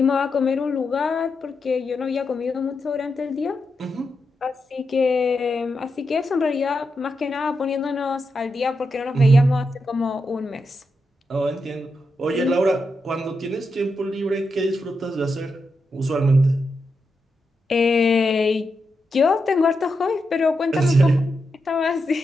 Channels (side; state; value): both; normal; correlation 0.86